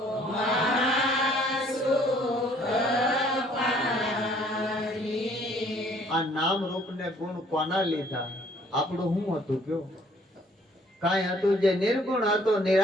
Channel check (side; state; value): both; normal; correlation 0.60